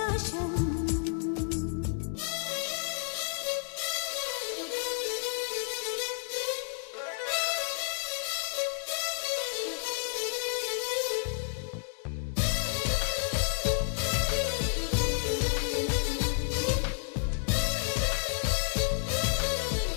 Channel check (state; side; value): silent; right; 57 dB below the other